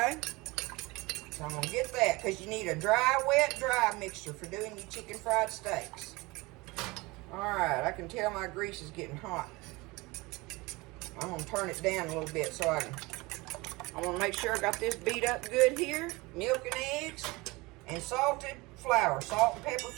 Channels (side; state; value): left; quieter; 23.1 dB